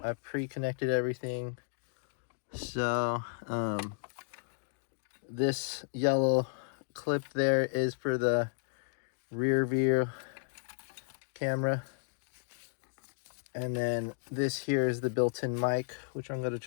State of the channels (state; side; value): silent; right; digital silence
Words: pre-connected everything. So this yellow clip there is for the rear view camera. And then this here is the built-in mic, which I'm going to